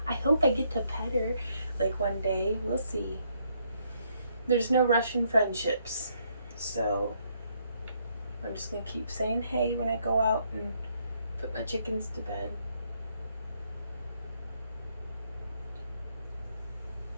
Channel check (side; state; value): both; inverted; correlation -0.72